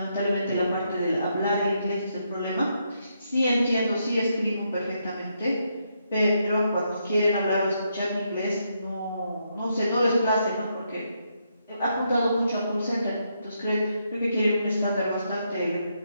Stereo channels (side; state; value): both; inverted; correlation -0.79